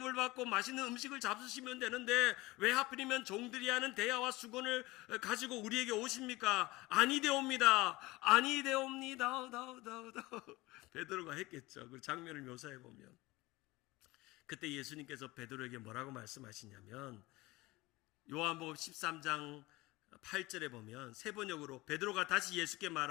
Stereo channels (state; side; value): quieter; right; 20.8 dB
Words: 받고 맛있는 음식을 잡수시면 되는데 왜 하필이면 종들이 하는 대야와 수건을 가지고 우리에게 오십니까? 아니되옵니다. 베드로가 했겠죠. 그 장면을 묘사해 보면 그때 예수님께서 베드로에게 뭐라고 말씀하시냐면 요한복음 13장 8절에 보면 세 번역으로 베드로가 다시 예수께